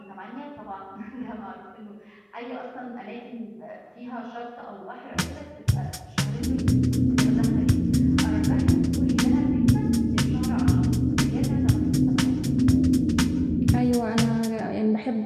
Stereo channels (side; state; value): both; identical; correlation 1.00